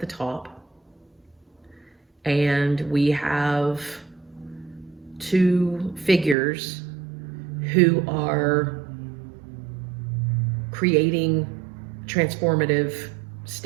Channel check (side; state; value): left; drops out; at 6.4 s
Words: top. And we have two figures who are creating transformative